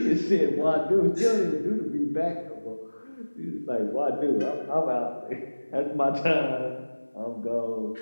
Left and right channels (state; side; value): inverted; both; correlation -1.00